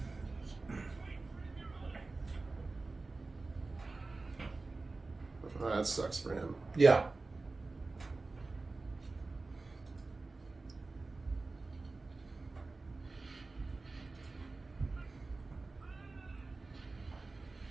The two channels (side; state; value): left; quieter; 3.5 dB